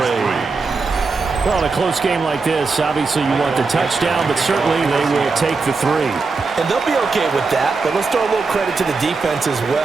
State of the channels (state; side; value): quieter; left; 4.3 dB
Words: Well, in a close game like this, obviously you want the touchdown, but certainly they will take the 3. And they'll be okay with that, but let's throw a little credit to the defense as